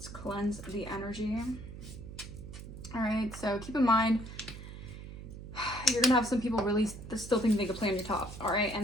cleanse the energy. All right. So keep in mind, you're gonna have some people really still think they could play on your top. All right,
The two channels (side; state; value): right; noise; hum, 12 dB below the sound